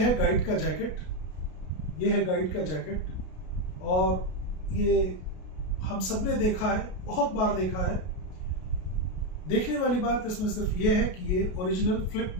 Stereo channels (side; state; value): right; late; 33 ms